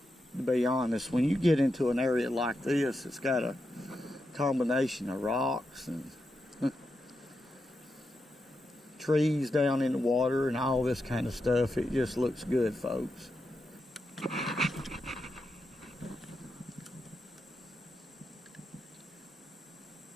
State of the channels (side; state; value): both; normal; correlation 0.86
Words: to be honest. When you get into an area like this, it's got a combination of rocks and trees down in the water and all this kind of stuff. It just looks good, folks.